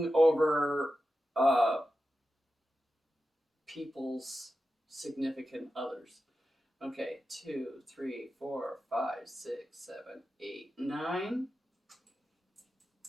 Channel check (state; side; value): normal; both; correlation 0.91